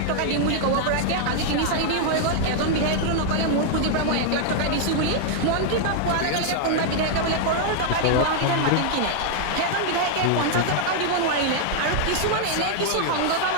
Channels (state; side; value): different; both; correlation 0.00